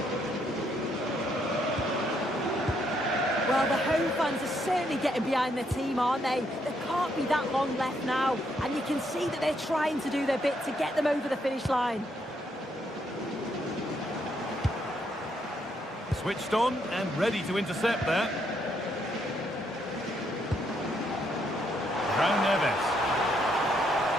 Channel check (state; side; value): normal; both; correlation 0.74